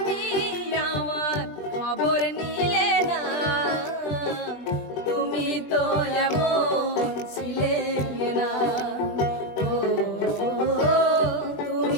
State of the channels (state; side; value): late; right; 21 ms